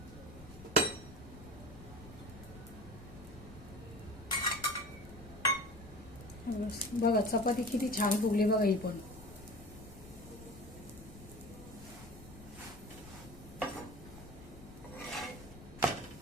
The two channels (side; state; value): left; noise; rumble, 17 dB below the sound